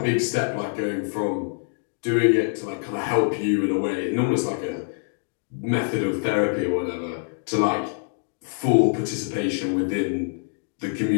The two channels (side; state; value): right; silent; digital silence